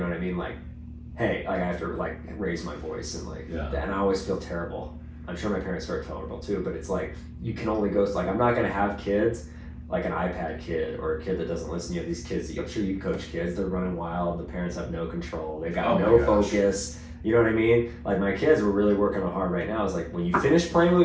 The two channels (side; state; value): both; identical; correlation 1.00